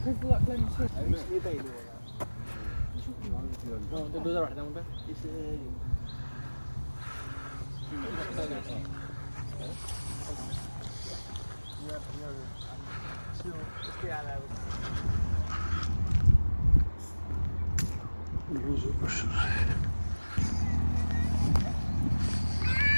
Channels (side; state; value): both; inverted; correlation -1.00